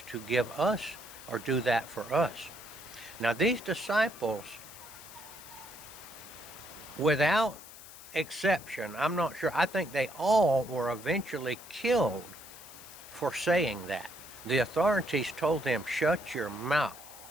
to give us, or do that for us. Now, these disciples, without exception, I'm not sure, I think they all were eventually killed for saying that. The authorities told them, shut your mouth.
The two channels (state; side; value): noise; left; hiss, 17 dB below the sound